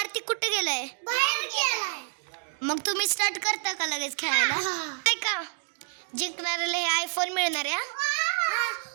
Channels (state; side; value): silent; left; 59 dB below the other